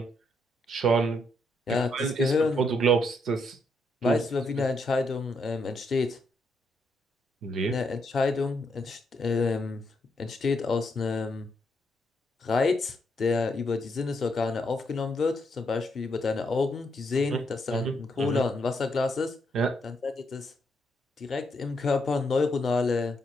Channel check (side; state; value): both; normal; correlation 0.77